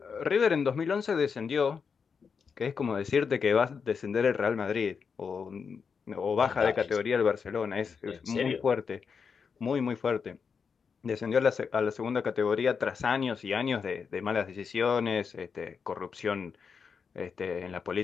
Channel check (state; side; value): quieter; right; 5.9 dB